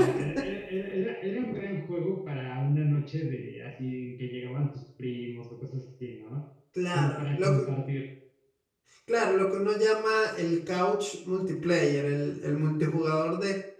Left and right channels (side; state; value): both; identical; correlation 1.00